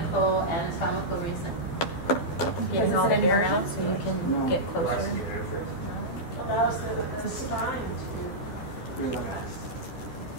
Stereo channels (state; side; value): late; right; 12 ms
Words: anatomical reason. Getting all the air out so you can get closer. Allows the spine to Relax.